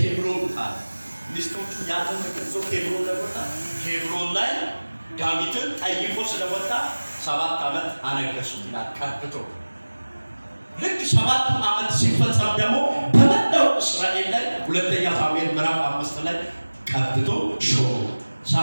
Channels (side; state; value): both; inverted; correlation -1.00